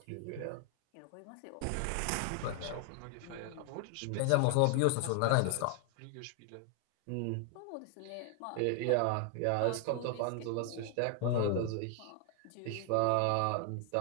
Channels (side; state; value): both; different; correlation 0.00